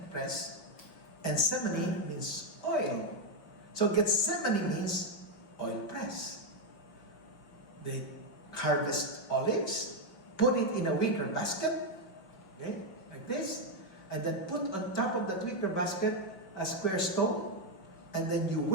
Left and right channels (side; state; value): right; late; 5.4 ms